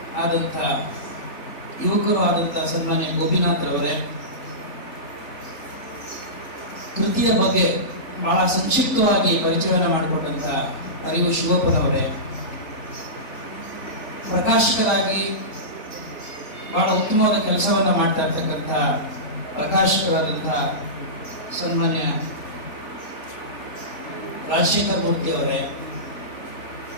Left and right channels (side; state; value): right; late; 3.5 ms